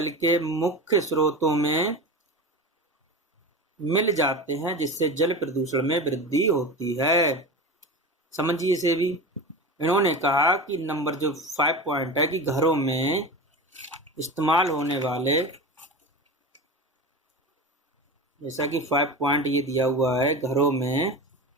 के मुख्य स्रोतों में मिल जाते हैं, जिससे जल प्रदूषण में वृद्धि होती है। समझिए इसे भी। इन्होंने कहा कि नंबर जो 5 पॉइंट है कि घरों में इस्तेमाल होने वाले, जैसा कि 5 पॉइंट ये दिया हुआ है, घरों में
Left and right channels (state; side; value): normal; both; correlation 0.28